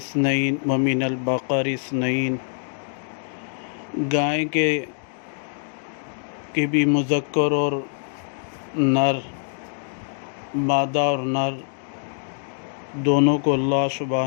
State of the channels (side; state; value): right; silent; digital silence